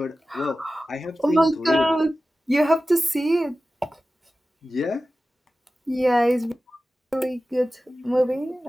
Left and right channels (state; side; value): normal; both; correlation 0.95